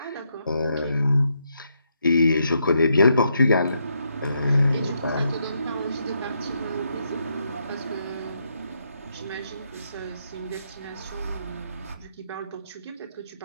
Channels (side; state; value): both; inverted; correlation -0.79